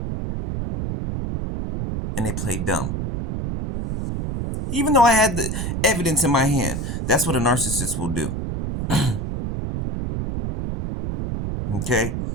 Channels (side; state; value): right; noise; rumble, 3 dB below the sound